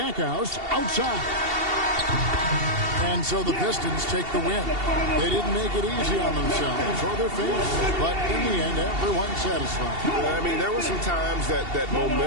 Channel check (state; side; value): late; left; 2.7 ms